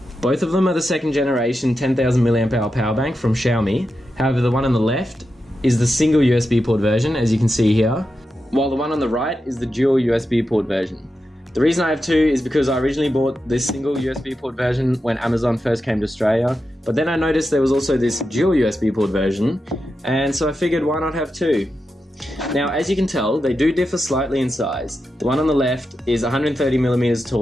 Both of them are the second generation 10000mAh Powerbank from Xiaomi. However, the one on the left is the single USB port version, as you can see here, while the one on the right is the dual USB port version. The reason I have two is because I originally bought this single USB port version when Amazon first came to Australia, but then I noticed there was also this dual USB port version, and so I figured why not have two. Now, as you can tell, they do differ slightly in size. The one on the left is 130mm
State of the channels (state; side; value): normal; both; correlation 0.89